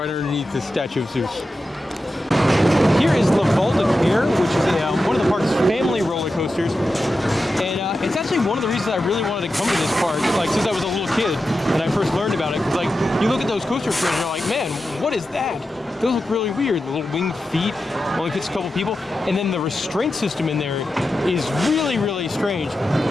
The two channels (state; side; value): normal; both; correlation 0.91